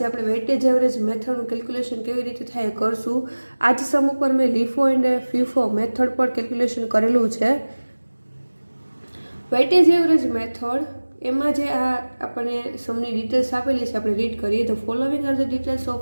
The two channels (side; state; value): both; inverted; correlation -1.00